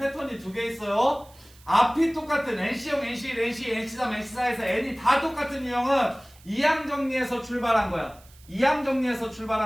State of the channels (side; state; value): right; noise; hiss, 26 dB below the sound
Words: 2개 있어요. 앞이 똑같은 NC형, NC1, NC, NC3, NC4에서 N이 다 똑같은 유형은 이항 정리에서 출발한 거야. 이항 정리에서